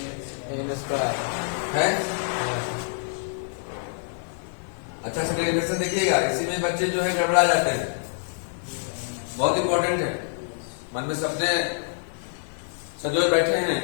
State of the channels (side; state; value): right; silent; 59 dB below the other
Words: square है। अच्छा से डेरिवेशन देखिएगा, इसी में बच्चे जो है गड़बड़ा जाते हैं, बहुत इंपॉर्टेंट है। मन में सपने सजोए बैठे हैं